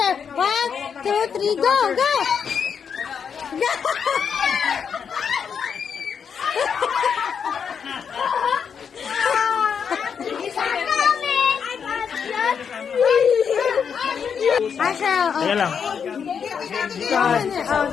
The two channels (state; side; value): quieter; right; 6.9 dB